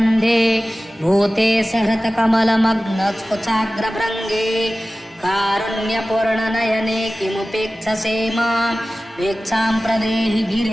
भूते सहृतकमलमग्नकुचाग्रभृङ्गे कारुण्यपूर्णनयने किमुपेक्षसे मां भिक्षां प्रदेहि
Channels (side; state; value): both; normal; correlation 0.96